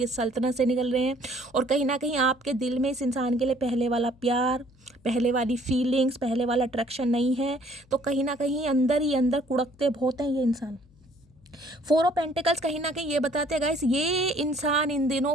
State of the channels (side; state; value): left; noise; hum, 29 dB below the sound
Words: सल्तनत से निकल रहे हैं, और कहीं ना कहीं आपके दिल में इस इंसान के लिए पहले वाला प्यार, पहले वाली फीलिंग्स, पहले वाला अट्रैक्शन नहीं है। तो कहीं ना कहीं अंदर ही अंदर कुड़कते बहुत हैं ये इंसान। 4 ऑफ पेंटिकल्स कहीं ना कहीं ये बताते हैं गाइस, ये इंसान इन दिनों